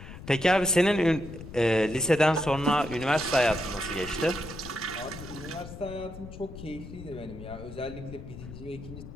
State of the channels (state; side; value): noise; left; rumble, 13 dB below the sound